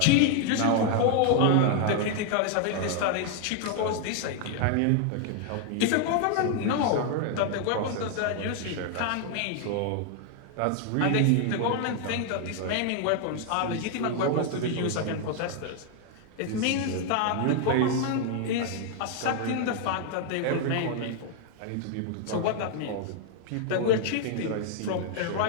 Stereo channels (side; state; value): both; different; correlation 0.00